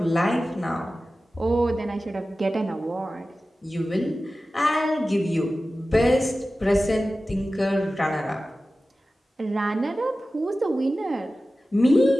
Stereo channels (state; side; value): normal; both; correlation 0.95